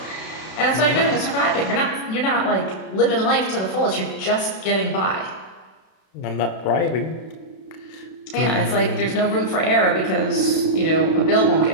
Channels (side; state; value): right; late; 32 ms